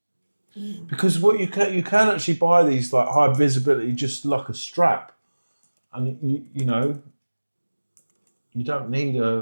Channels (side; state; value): both; inverted; correlation -1.00